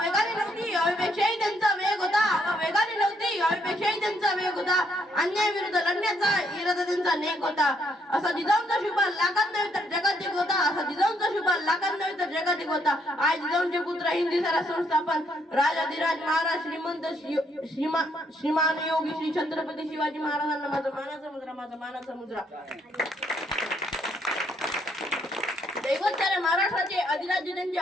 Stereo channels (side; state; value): both; normal; correlation 0.72